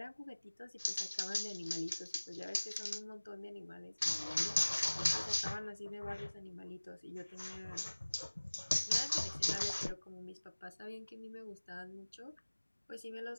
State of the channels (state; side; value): inverted; both; correlation -1.00